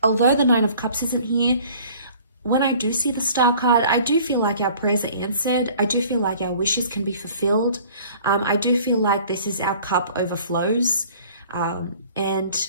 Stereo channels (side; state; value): both; inverted; correlation -0.50